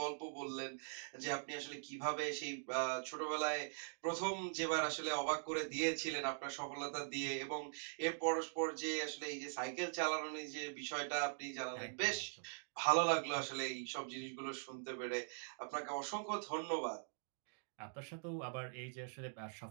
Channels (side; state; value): left; silent; digital silence